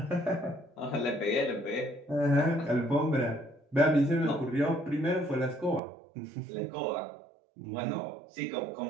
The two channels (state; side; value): drops out; left; at 5.8 s